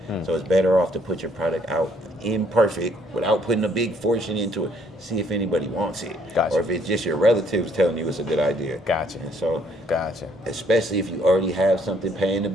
So it's better off to put your product out imperfect without putting a big fortune into it. See if anybody wants it. Gotcha. Or if it's just your relatives telling you it's a good idea. Gotcha. And so, Gotcha. especially if you already have something paying the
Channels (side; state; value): both; normal; correlation 0.66